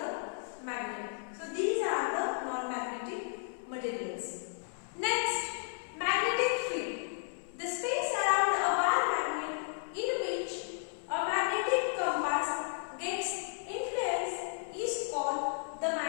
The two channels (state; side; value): silent; right; 55 dB below the other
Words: magnet. So these are the non-magnetic materials. Next, magnetic field. The space around a bar magnet in which a magnetic compass gets influence is called the